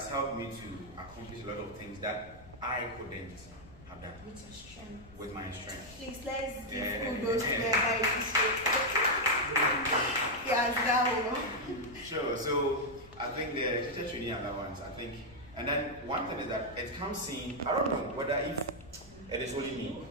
helped me to accomplish a lot of things that I couldn't have done. With your strength. With my strength. Please, let's give kudos to the Yes, that one. Sure. So I think the teacher training allowance, and then one thing is that it comes in, I don't know whether if it is only me.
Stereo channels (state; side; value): noise; left; rumble, 21 dB below the sound